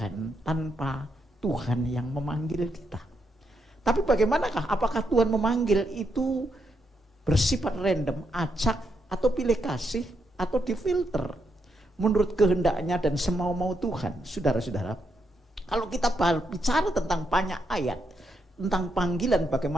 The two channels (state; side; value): normal; both; correlation 0.80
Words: tanpa Tuhan yang memanggil kita. Tapi bagaimanakah? Apakah Tuhan memanggil itu bersifat random, acak, atau pilih kasih, atau difilter menurut kehendaknya dan semau-mau Tuhan? Saudara-saudara, kalau kita bicara tentang banyak ayat tentang panggilan,